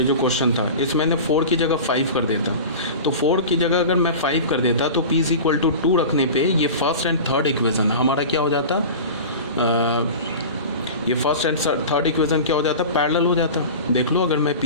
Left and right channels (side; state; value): both; inverted; correlation -0.33